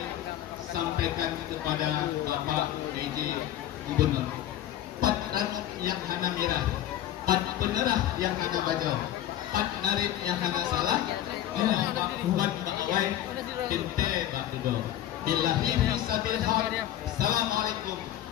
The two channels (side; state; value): right; quieter; 12.3 dB